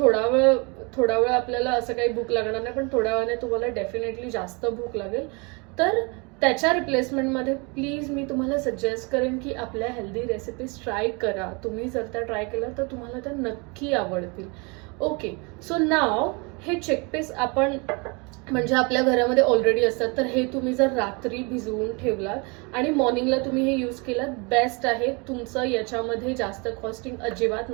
थोडा वेळ आपल्याला असं काही भूक लागणार नाही, पण थोड्या वेळाने तुम्हाला डेफिनेटली जास्त भूक लागेल. तर त्याच्या रिप्लेसमेंटमध्ये प्लीज मी तुम्हाला सजेस्ट करेन की आपल्या हेल्दी रेसिपीज ट्राय करा. तुम्ही जर त्या ट्राय केल्या तर तुम्हाला त्या नक्की आवडतील. ओके, सो नाव हे चिकपीस आपण म्हणजे आपल्या घरामध्ये ऑलरेडी असतात, तर हे तुम्ही जर रात्री भिजवून ठेवलात आणि मॉर्निंगला तुम्ही हे यूज केलात, बेस्ट आहे. तुमचं याच्यामध्ये जास्त कॉस्टिंग अजिबात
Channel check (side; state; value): left; quieter; 30.5 dB